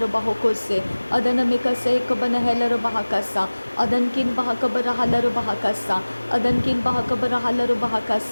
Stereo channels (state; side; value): inverted; both; correlation -1.00